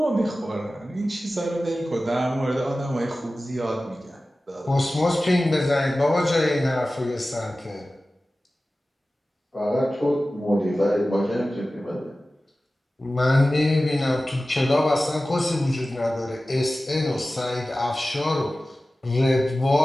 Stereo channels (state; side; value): normal; both; correlation 0.96